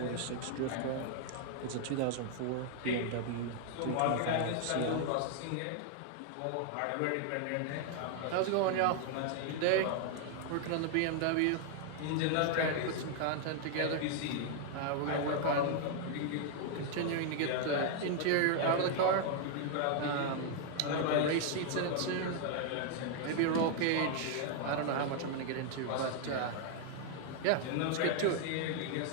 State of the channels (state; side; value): different; both; correlation 0.00